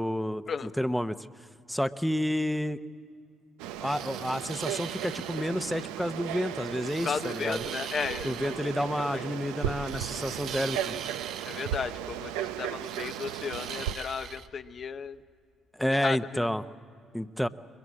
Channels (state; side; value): normal; both; correlation 0.80